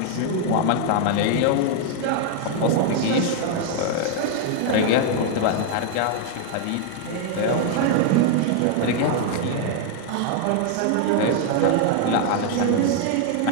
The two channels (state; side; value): different; both; correlation 0.00